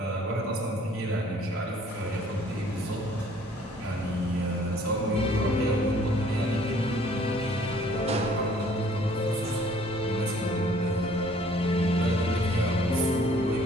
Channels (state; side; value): normal; both; correlation 0.58